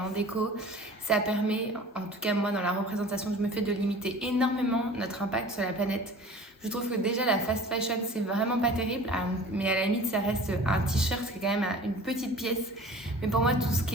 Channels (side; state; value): both; normal; correlation 0.43